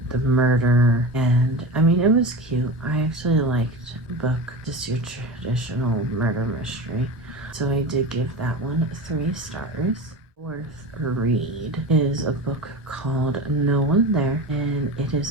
the murder. And I mean, it was cute. I actually liked the book, just your traditional murder mystery, so I did give that one 3 stars. Fourth read is a book called No One There, and it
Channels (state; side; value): normal; both; correlation 0.28